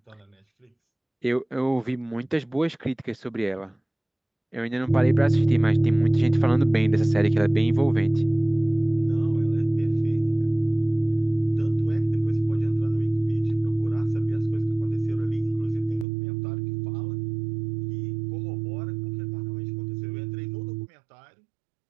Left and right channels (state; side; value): drops out; left; at 16.1 s